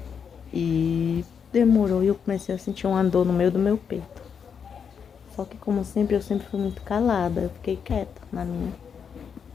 E demorou e eu comecei a sentir uma dor no meio do meu peito. Só que como sempre, eu sempre fui muito calada, eu fiquei quieta na minha,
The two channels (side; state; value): right; quieter; 6.9 dB